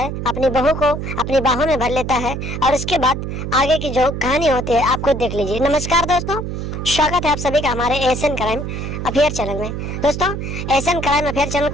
अपनी बहू को अपनी बाहों में भर लेता है और उसके बाद आगे की जो कहानी होती है आप खुद देख लीजिए। नमस्कार दोस्तों, स्वागत है आप सभी का हमारे एशियन क्राइम अफेयर चैनल में। दोस्तों, एशियन क्राइम अफेयर चैनल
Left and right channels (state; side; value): noise; right; hum, 5 dB below the sound